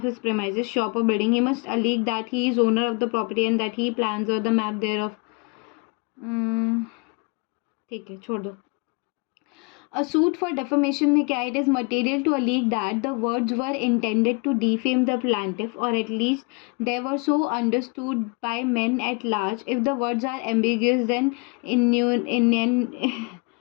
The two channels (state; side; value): quieter; right; 32.0 dB